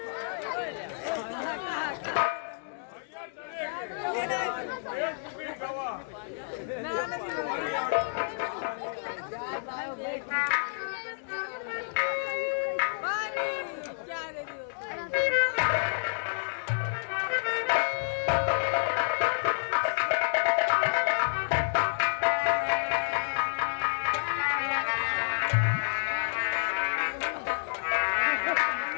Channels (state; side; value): silent; right; digital silence